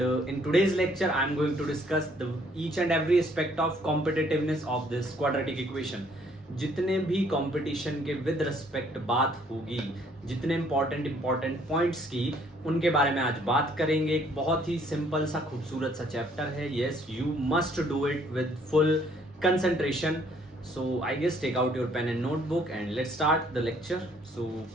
in today's lecture I am going to discuss the each and every aspect of competitiveness of this quadratic equation. जितने भी competition के with respect बात होगी, जितने important points की, उनके बारे में आज बात करेंगे। एक बहुत ही सिंपल सा खूबसूरत सा चैप्टर है। Yes, you must do it with full concentration. So I guess take out your pen and notebook and let's start the lecture. So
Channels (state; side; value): normal; both; correlation 0.63